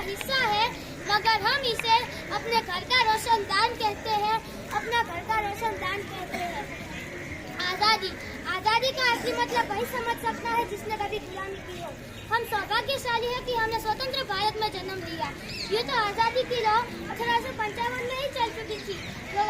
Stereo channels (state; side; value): identical; both; correlation 1.00